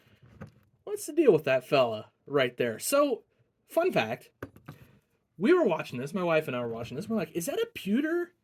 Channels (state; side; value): identical; both; correlation 1.00